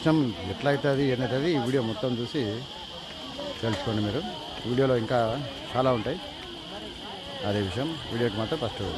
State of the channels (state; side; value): identical; both; correlation 1.00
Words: ఎట్లా అవుతుంది ఏంటవుతుంది ఈ వీడియో మొత్తం చూసి తెలుసుకోండి మీరు. వీడియోలో ఇంకా చాలా ఉంటాయి. అదే విషయం, వీడియోకి మాత్రం ఫస్ట్